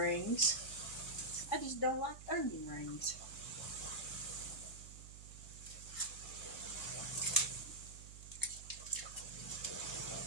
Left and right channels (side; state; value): right; noise; hum, 14 dB below the sound